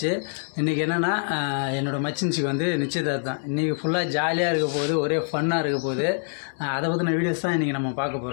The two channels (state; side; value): silent; right; digital silence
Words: இன்றைக்கி என்னென்னா என்னோடய மச்சின்சிக்கு வந்து நிச்சயதார்த்தம். இன்றைக்கி ஃபுல்லாக ஜாலியாக இருக்க போகுது, ஒரே ஃபன்னாக இருக்க போகுது. அதை பற்றின வீடியோஸ் தான் இன்றைக்கி நம்ம பார்க்க